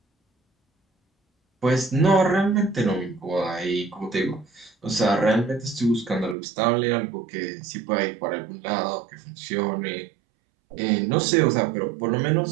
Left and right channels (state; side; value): drops out; left; at 6.4 s